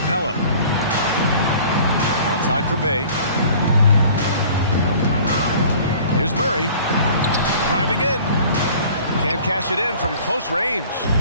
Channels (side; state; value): both; inverted; correlation -0.48